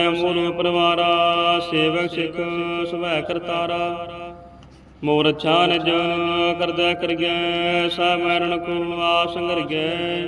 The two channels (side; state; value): both; identical; correlation 1.00